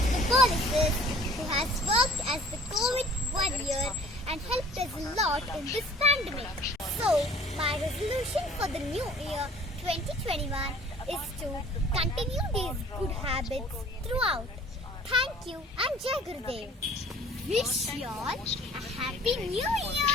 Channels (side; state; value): both; normal; correlation 0.51